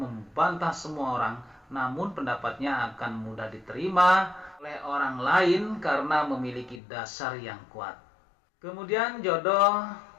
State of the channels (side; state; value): right; drops out; at 6.8 s